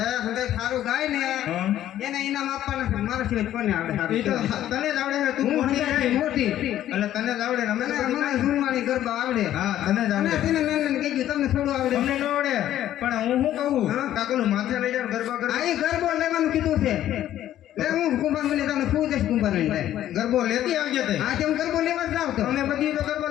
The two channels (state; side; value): quieter; right; 12.3 dB